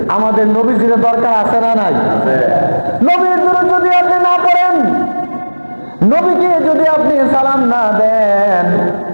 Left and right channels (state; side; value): inverted; both; correlation -1.00